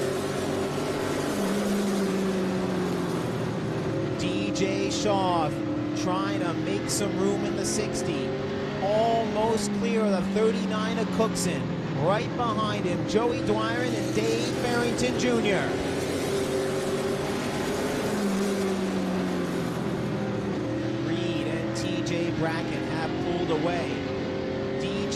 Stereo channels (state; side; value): identical; both; correlation 1.00